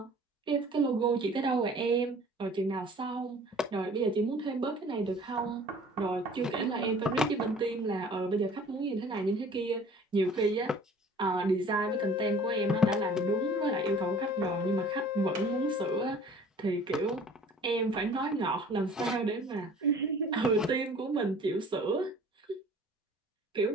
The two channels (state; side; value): normal; both; correlation 0.49